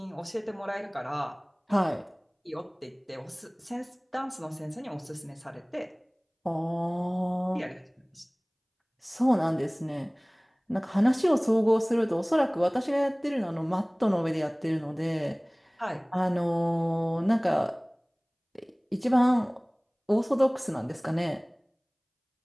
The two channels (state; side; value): identical; both; correlation 1.00